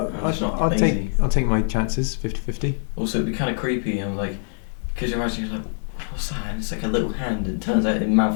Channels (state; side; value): silent; right; 63 dB below the other